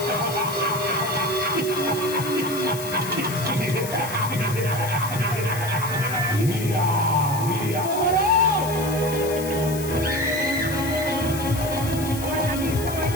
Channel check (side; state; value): left; noise; hiss, 10 dB below the sound